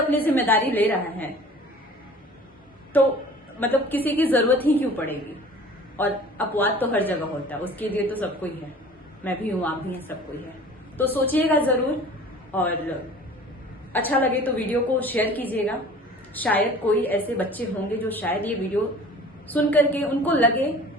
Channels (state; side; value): normal; both; correlation 0.45